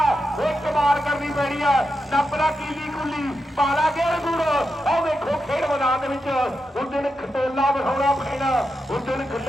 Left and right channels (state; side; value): normal; both; correlation 0.87